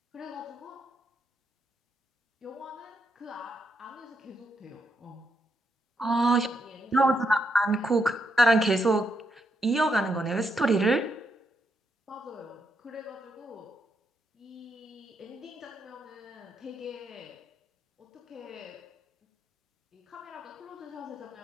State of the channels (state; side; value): normal; both; correlation 0.80